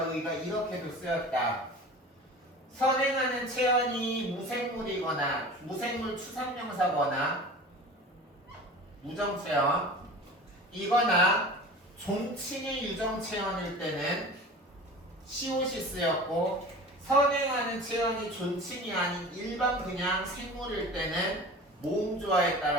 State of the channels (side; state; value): both; normal; correlation 0.38